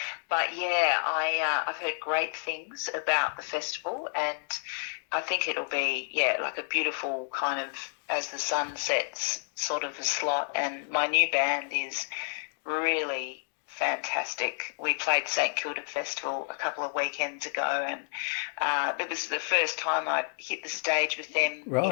But yeah, I've heard great things about the festival, and I think it'll be like a beautiful kind of as the sun sets sort of a slot. And my new band is really fantastic. We played St Kilda Festival a couple of weekends ago, and it was the first time I'd hit the stage with them in a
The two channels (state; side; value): silent; right; 58 dB below the other